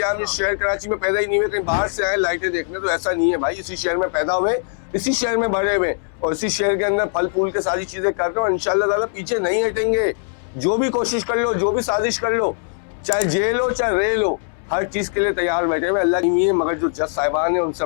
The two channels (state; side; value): silent; right; digital silence